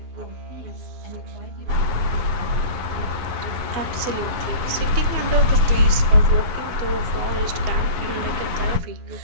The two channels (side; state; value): left; late; 12 ms